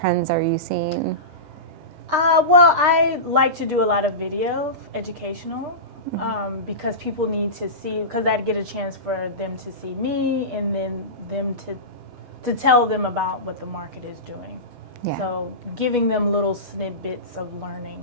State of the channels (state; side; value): late; left; 8.2 ms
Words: are you seeing? Well, I like to do a lot of video, educational, because people need to see, because I'd get a chance for them to see me and then them to tell them about what the market is doing. Yeah. So giving them little snippets of learning.